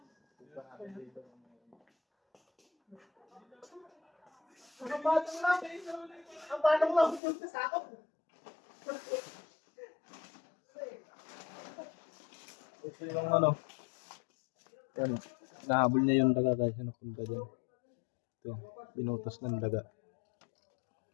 Ang batang lang. Ang batang lang. Punta sa ako. Ito yung ano. Ano. Nahabol niya yung daga guys. Napunta dyan. Ito. Binutas ng daga.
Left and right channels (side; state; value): right; drops out; at 7.2 s